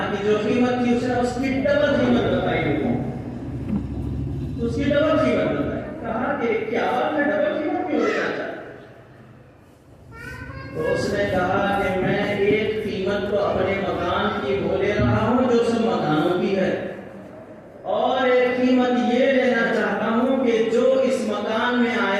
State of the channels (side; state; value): both; identical; correlation 1.00